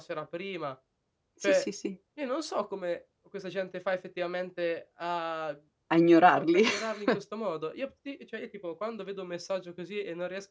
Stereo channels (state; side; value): identical; both; correlation 1.00